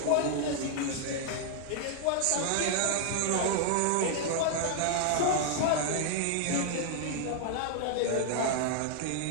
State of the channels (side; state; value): both; different; correlation 0.00